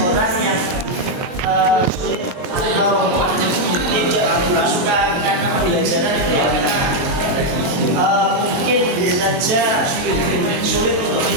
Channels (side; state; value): left; late; 23 ms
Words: orang yang sulit atau tidak suka karena pembelajaran itu ya karena mungkin bisa saja sulit untuk